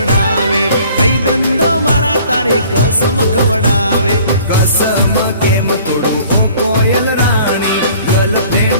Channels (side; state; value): both; inverted; correlation -0.53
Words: भाईबंधो मारा तारी कसम खवडावे।